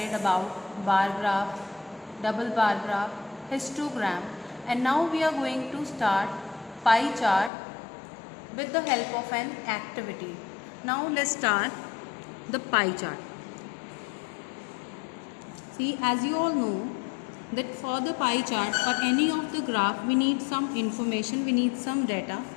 about bar graph, double bar graph, histogram, and now we are going to start pie chart with the help of an activity. Now let's start the pie chart. See, as you all know that for the pie chart or any of the graph we need some information, we need some data.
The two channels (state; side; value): drops out; right; at 7.5 s